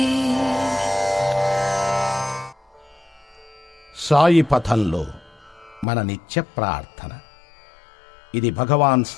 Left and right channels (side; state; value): right; drops out; at 5.9 s